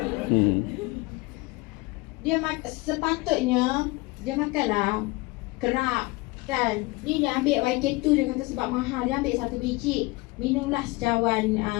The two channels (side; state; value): right; quieter; 23.9 dB